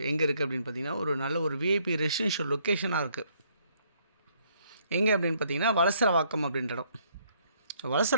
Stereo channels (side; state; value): both; inverted; correlation -0.67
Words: எங்கே இருக்குது அப்படின்னு பார்த்தீங்கன்னா ஒரு நல்ல ஒரு விஐபி ரெசிடென்ஷியல் லொக்கேஷனாக இருக்குது. எங்கே அப்படின்னு பார்த்தீங்கன்னா வலசரவாக்கம் அப்படின்ற இடம்.